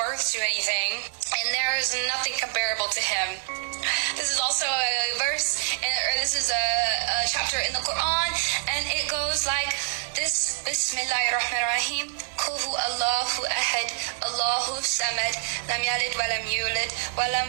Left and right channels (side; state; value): left; silent; 61 dB below the other